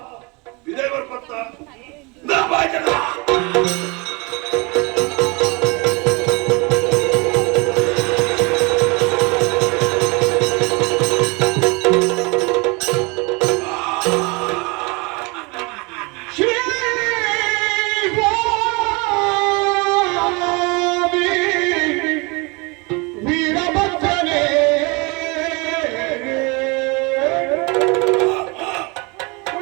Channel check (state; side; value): quieter; left; 28.4 dB